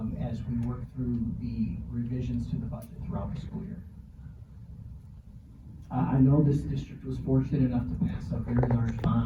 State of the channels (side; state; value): both; identical; correlation 1.00